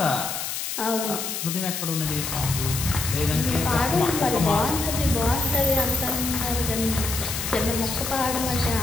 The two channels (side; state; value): left; noise; hiss, 4 dB below the sound